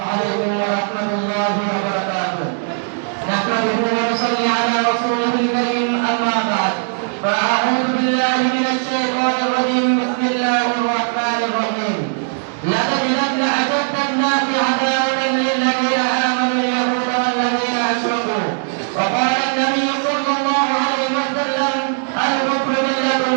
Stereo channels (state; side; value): silent; left; 67 dB below the other